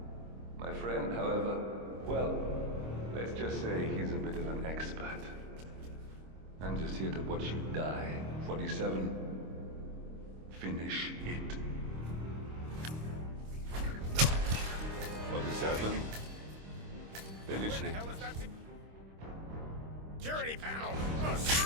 My friend, however, well, let's just say he's a bit of an expert. I'm just here to watch you die. 47. Finish it. 47. Finish it. Security panel!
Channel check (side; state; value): left; late; 26 ms